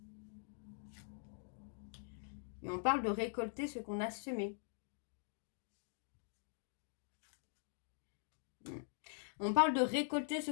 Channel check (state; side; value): silent; right; digital silence